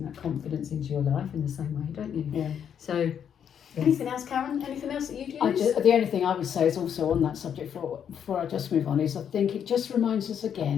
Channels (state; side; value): quieter; right; 8.4 dB